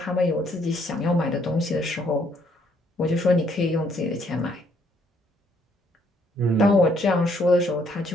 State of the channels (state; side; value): normal; both; correlation 0.68